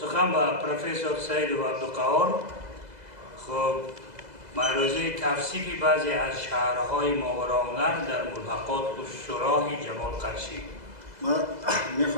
ба профессор Саидов Абдуқаҳор. хуб маърузаи тавсифи баъзе аз шаҳрҳои Моғорронар дар мулҳақот устуроҳи Ҷамол Қаршӣ. من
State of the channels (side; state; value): left; late; 2.0 ms